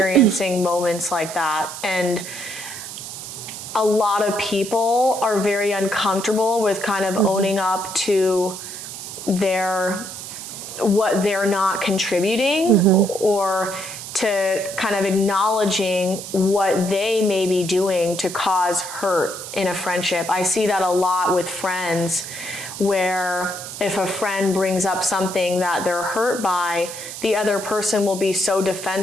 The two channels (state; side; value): noise; right; hiss, 10 dB below the sound